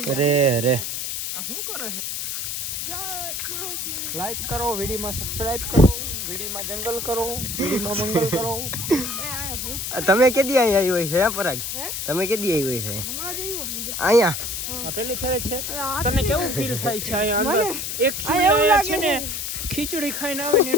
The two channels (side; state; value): left; noise; hiss, 4 dB below the sound